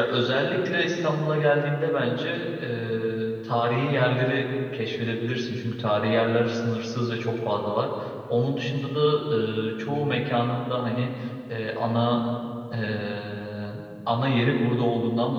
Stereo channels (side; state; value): both; identical; correlation 1.00